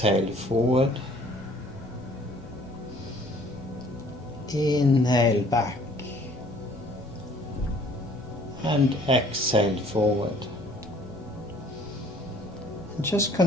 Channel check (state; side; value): normal; both; correlation 0.56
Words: forward, inhale back and exhale forward. And just